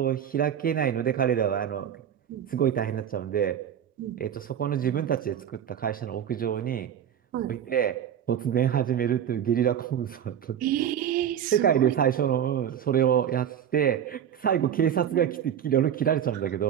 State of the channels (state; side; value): quieter; left; 9.3 dB